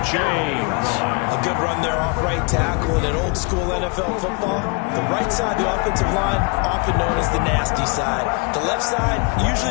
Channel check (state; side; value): quieter; right; 31.6 dB